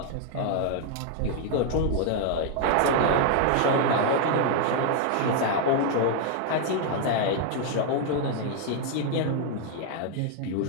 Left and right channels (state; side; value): different; both; correlation 0.00